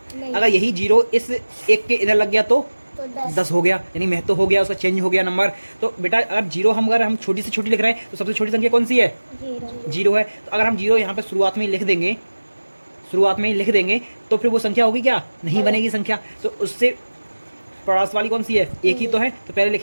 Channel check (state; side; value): inverted; both; correlation -1.00